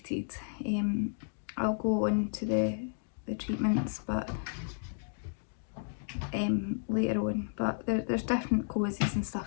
I'll go on to the treatments, but later on. But there's different causes and stuff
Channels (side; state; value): right; silent; digital silence